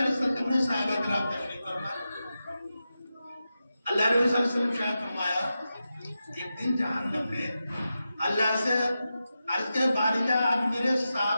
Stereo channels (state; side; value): inverted; both; correlation -0.91